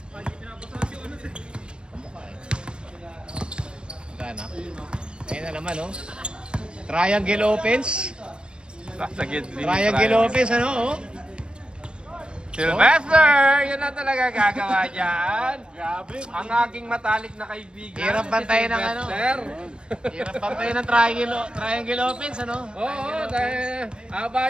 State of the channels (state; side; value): late; left; 0.054 ms